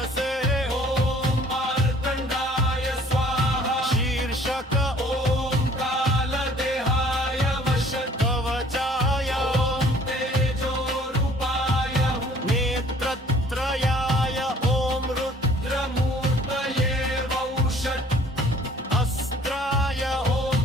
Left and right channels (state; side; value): normal; both; correlation 0.55